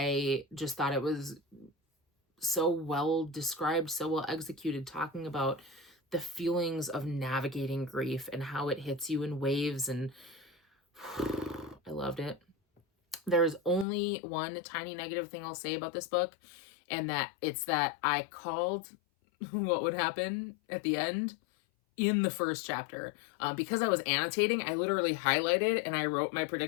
just thought it was so well described, so well executed, talking about the feelings of navigating grief and how it hits you in waves. And I loved it. There's only one tiny negative thing I'll say about this book, and that it's that I called what would happen at the end in the first chapter. Because I was annotating, I literally highlighted and I wrote my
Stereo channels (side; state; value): right; drops out; at 13.9 s